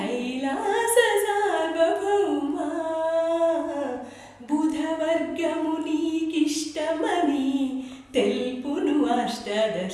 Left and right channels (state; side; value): identical; both; correlation 1.00